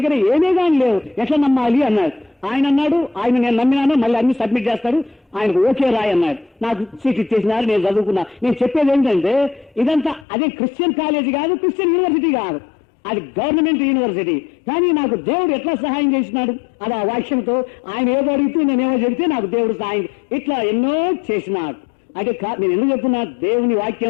ఏమీ కానీ లేవు, ఎట్లా నమ్మాలి అన్నాడు. ఆయన అన్నాడు, ఆయన నేను నమ్మినాను, మళ్ళీ అన్ని సబ్మిట్ చేస్తాడు, ఆయనకు ఓకే రాయి అన్నాడు. నాకు సీట్ ఇచ్చేసినారు, నేను చదువుకున్నా. నేను చెప్పేది ఏంటంటే, ఇదంతా అదే క్రిస్టియన్ కాలేజీ కాదు, క్రిస్టియన్ యూనివర్సిటీ కాదు, అది గవర్నమెంట్ యూనివర్సిటీ. కానీ నాకు దేవుడు ఎట్లా సహాయం చేసినాడు, అది ఆ వాక్యంతో. ఆయన ఏదో అడిగితే నేనేమో చెబితే నాకు దేవుడు సహాయం ఇట్లా ఎన్నో చేసినాడు. అంటే నేను ఎందుకు చెప్తున్నా, దేవుని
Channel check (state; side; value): drops out; right; at 10.2 s